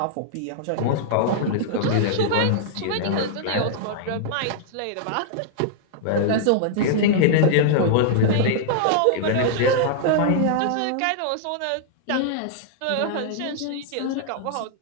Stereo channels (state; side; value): different; both; correlation -0.01